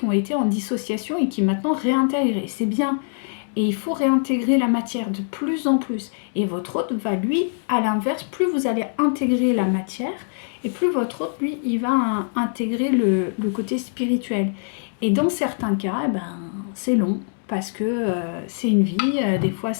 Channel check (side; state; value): right; silent; digital silence